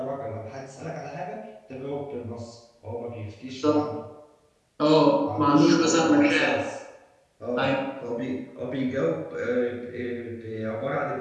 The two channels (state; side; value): identical; both; correlation 1.00